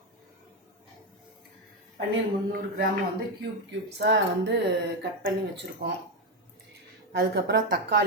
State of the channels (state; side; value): normal; both; correlation 0.08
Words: 300 கிராம் வந்து க்யூப்ஸாக கட் பண்ணி வச்சுருக்கோம். அதுக்கப்புறம்